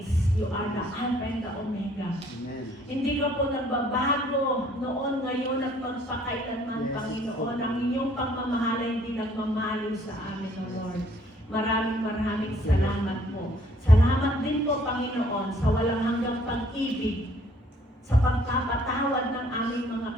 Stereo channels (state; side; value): normal; both; correlation 0.61